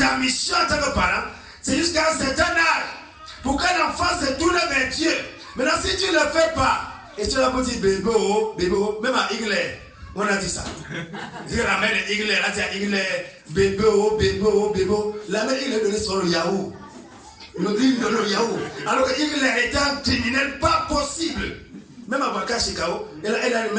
mission en tant que parent, c'est jusqu'à un certain âge. Pour qu'un enfant se tourne vers Dieu. Maintenant, si tu ne le fais pas, et tu l'as dit bébé, même à Igler, on a dit ça. La mère de Igler, elle a dit à Igler, bébé. La mère Igler donnait sur le Yahoo. Le livre de le Yahoo. Alors que Igler était un criminel pas possible. Même à Baka Chikao, il a une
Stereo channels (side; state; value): both; identical; correlation 1.00